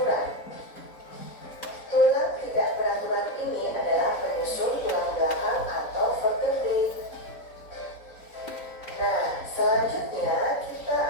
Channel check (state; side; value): late; right; 4.0 ms